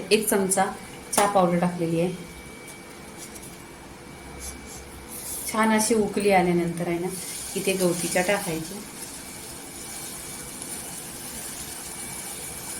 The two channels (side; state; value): both; identical; correlation 1.00